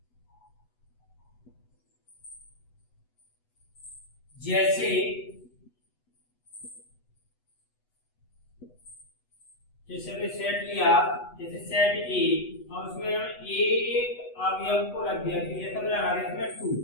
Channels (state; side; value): late; right; 8.1 ms